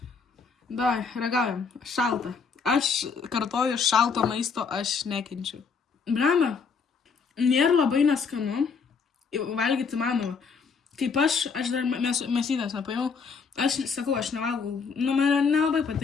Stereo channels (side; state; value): right; quieter; 5.4 dB